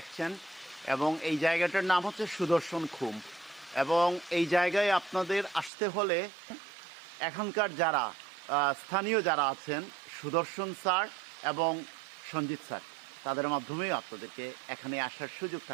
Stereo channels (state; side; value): drops out; left; at 5.7 s